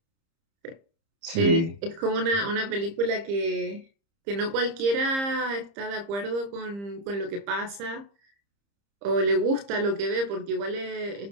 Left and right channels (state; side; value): late; left; 30 ms